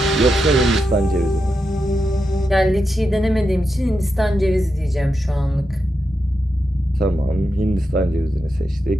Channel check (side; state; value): both; normal; correlation 0.87